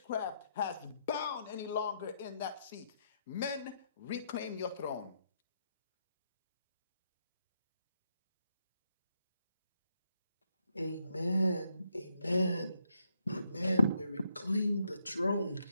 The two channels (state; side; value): inverted; both; correlation -0.78